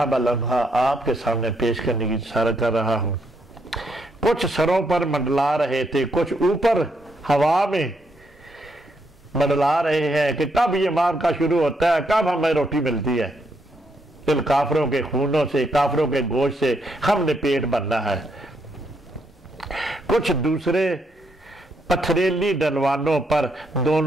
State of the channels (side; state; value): both; normal; correlation 0.76